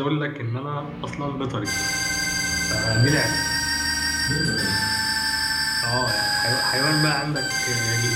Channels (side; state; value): both; identical; correlation 1.00